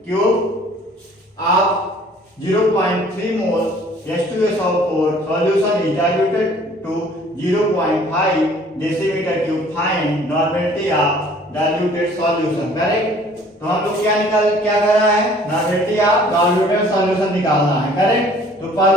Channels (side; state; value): both; normal; correlation 0.54